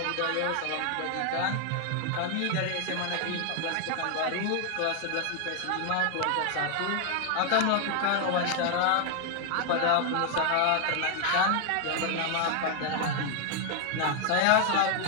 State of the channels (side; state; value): both; different; correlation 0.00